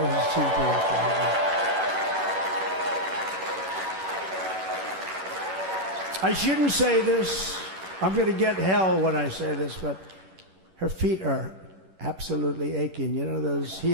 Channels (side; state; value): left; late; 11 ms